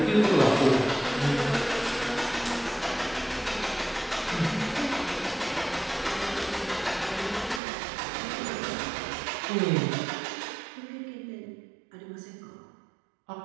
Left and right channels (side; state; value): left; drops out; at 7.6 s